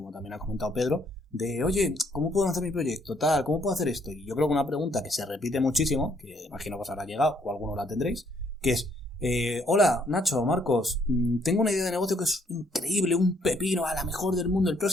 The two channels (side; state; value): both; normal; correlation 0.68